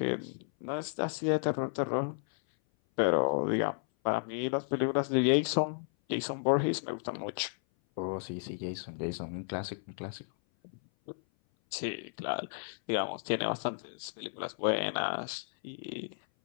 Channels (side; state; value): right; silent; 56 dB below the other